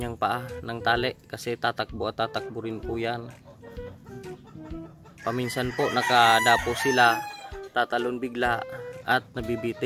paa ng tali kasi tatakbo at tatakbo rin po yan. Paminsan po nakadapo sila, tatalon bigla at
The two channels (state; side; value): identical; both; correlation 1.00